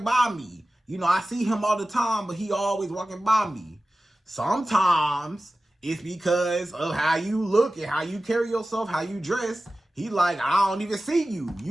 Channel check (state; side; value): normal; both; correlation 0.96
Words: by me? You know, I see him all the time, but he always walking by me. Sometimes it's because of how you look and how you carry yourself, how you dress. He like, I don't even see you.